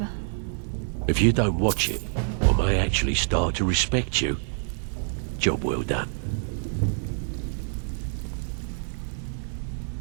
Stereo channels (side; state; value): left; silent; digital silence